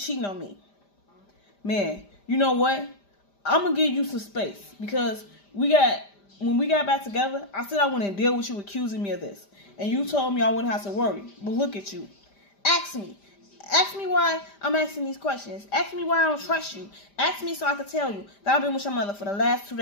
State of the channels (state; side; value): late; right; 5.0 ms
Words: on me. Man, you know what? I'm going to give you some space. Because when we got back together, I said I wouldn't deal with you accusing me of this. And you told me I wouldn't have to worry. But look at you. Ask me. Ask me why I'm asking these questions. Ask me why I don't trust you. Ask me so I can tell you that I've been with your mother for the last 2